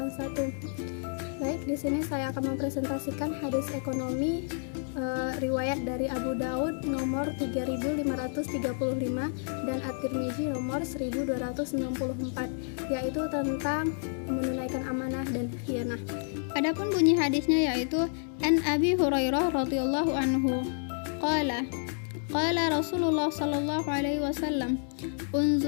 Baik, di sini saya akan mempresentasikan hadis ekonomi riwayat dari Abu Daud nomor 3535 dan At-Tirmizi nomor 1294, yaitu tentang menunaikan amanah dan khianah. Adapun bunyi hadisnya yaitu An Abi Hurairah radhiyallahu anhu qala Rasulullah sallallahu alaihi wasallam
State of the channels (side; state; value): right; silent; 58 dB below the other